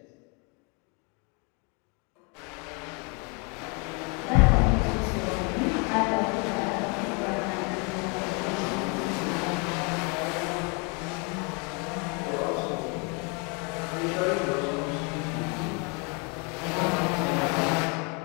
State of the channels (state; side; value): quieter; right; 33.1 dB